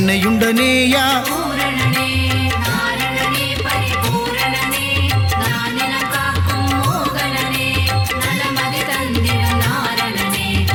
பூரணனே நாரணனே பரிபூரணனே நானிலம் காக்கும் மோகனனே நலமதி தந்திடும் நாரணனே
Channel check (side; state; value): both; identical; correlation 1.00